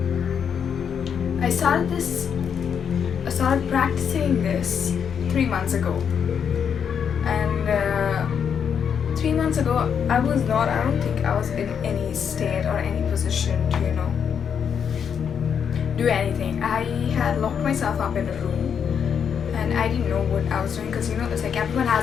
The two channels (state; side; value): quieter; right; 7.4 dB